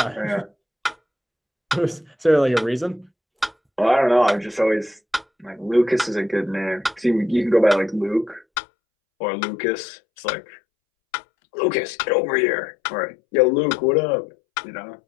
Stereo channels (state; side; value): drops out; right; at 8.5 s